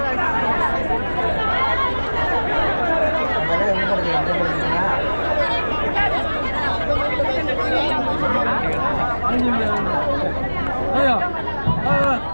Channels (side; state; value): both; inverted; correlation -1.00